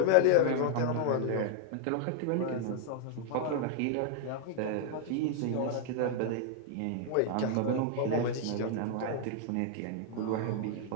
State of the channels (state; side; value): different; both; correlation 0.00